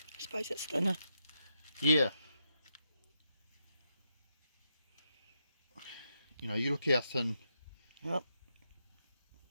I suppose it's thinner. you know, you look how thin Oh.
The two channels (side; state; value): both; inverted; correlation -0.83